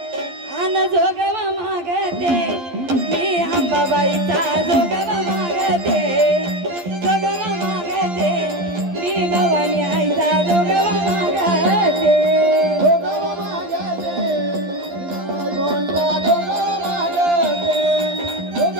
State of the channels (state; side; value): late; left; 12 ms